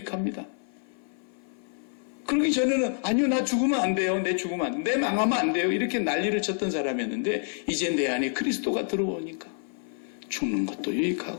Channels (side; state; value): right; silent; 55 dB below the other